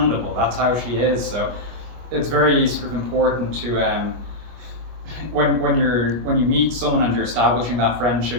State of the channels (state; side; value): late; left; 25 ms